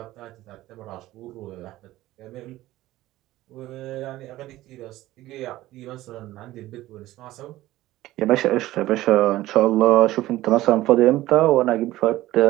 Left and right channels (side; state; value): left; quieter; 16.2 dB